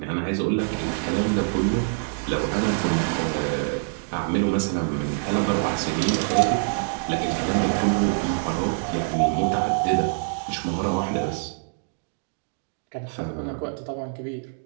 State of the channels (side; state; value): left; silent; 62 dB below the other